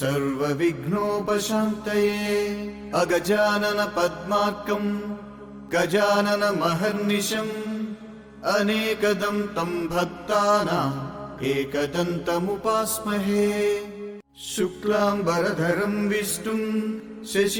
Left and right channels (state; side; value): identical; both; correlation 1.00